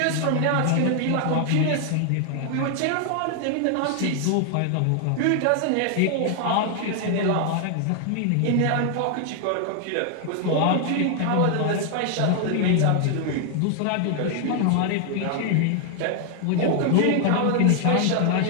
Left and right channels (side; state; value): both; different; correlation 0.00